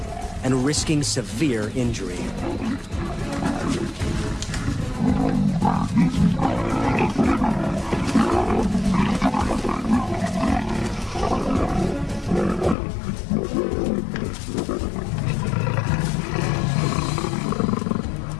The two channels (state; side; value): drops out; right; at 12.8 s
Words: And risking severe injury.